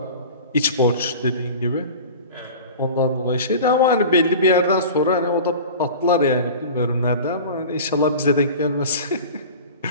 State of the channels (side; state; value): both; inverted; correlation -0.36